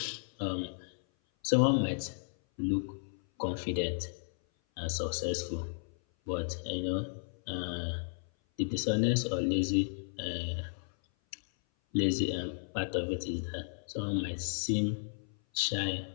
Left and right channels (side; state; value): right; silent; 55 dB below the other